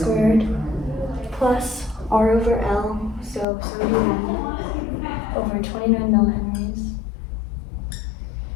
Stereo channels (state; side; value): drops out; right; at 3.5 s